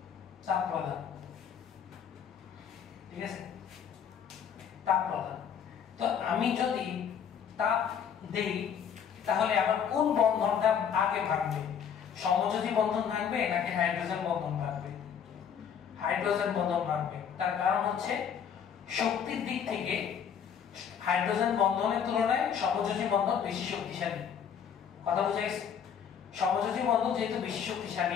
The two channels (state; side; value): quieter; right; 7.8 dB